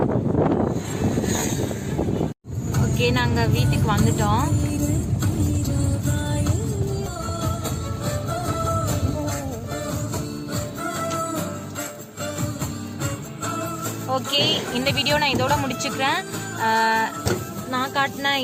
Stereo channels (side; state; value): both; identical; correlation 1.00